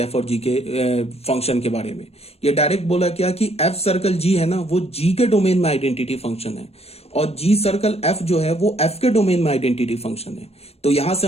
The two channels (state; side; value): late; right; 0.30 ms